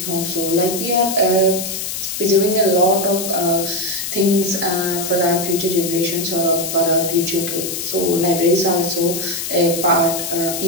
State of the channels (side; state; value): left; noise; hiss, 5 dB below the sound